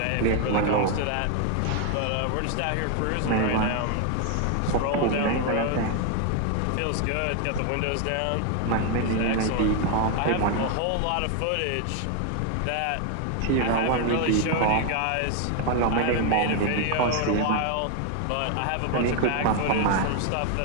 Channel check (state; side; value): different; both; correlation 0.01